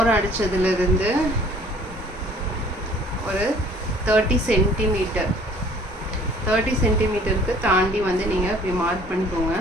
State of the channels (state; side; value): normal; both; correlation 0.54